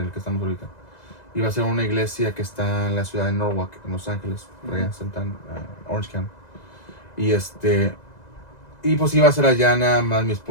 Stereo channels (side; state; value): right; late; 2.0 ms